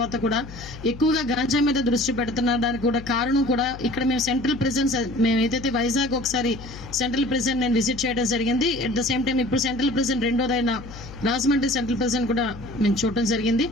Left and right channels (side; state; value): left; noise; hum, 14 dB below the sound